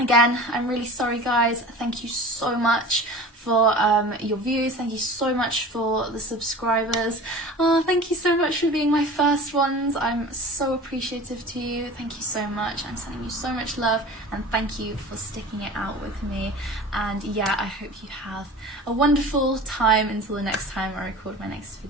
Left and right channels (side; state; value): both; normal; correlation 0.38